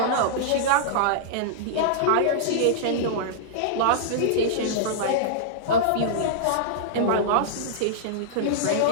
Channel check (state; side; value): different; both; correlation -0.02